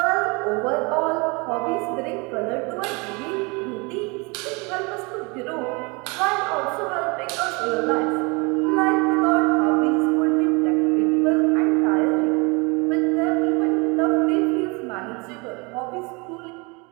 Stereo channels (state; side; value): quieter; left; 28.8 dB